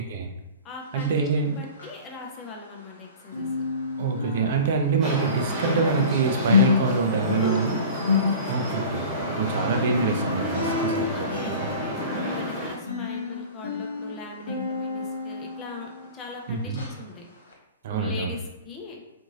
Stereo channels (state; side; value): inverted; both; correlation -0.39